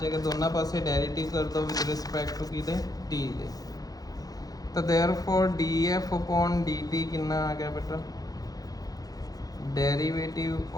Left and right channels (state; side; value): late; right; 0.18 ms